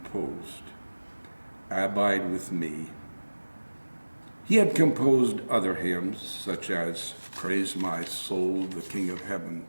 "Abide with Me." He had composed other hymns, such as "Praise My Soul, the King of Heaven,"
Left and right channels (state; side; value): inverted; both; correlation -1.00